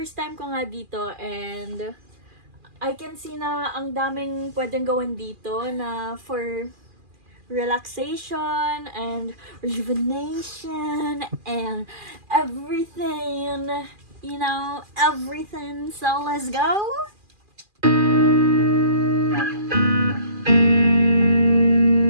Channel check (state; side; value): late; left; 2.4 ms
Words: time ko nga dito and I can see na ang daming pwedeng gawin dito na for relaxation and rejuvenation and everything, you know, everything. So let's go.